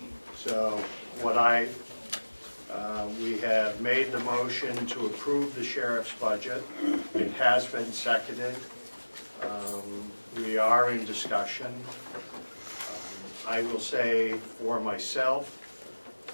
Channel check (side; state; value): both; inverted; correlation -1.00